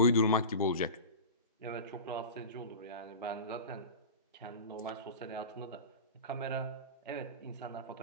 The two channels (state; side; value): inverted; both; correlation -0.30